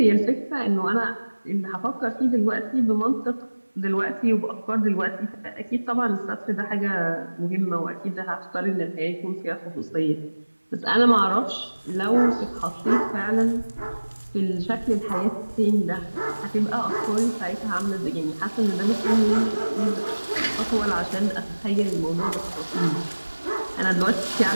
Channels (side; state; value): both; inverted; correlation -1.00